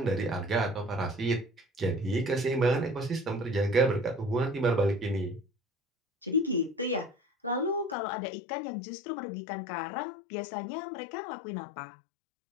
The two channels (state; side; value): drops out; right; at 8.0 s